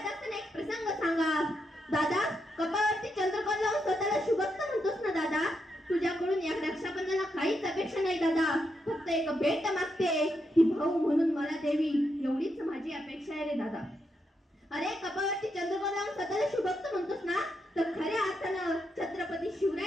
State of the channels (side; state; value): both; normal; correlation 0.82